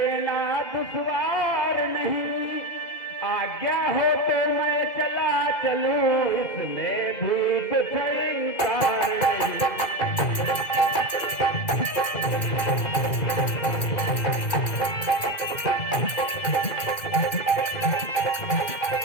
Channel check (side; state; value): right; late; 2.3 ms